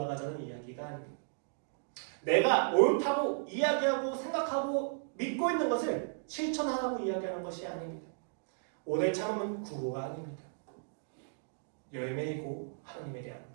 이야기가 아닙니다. 내가 옳다고 이야기하고 생각하고 믿고 있는 것을 실천하라고 이야기하는 것이 아닙니다. 오래 참음은 구호가 아닙니다. 열매이고 하나님에 대한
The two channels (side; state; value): left; silent; digital silence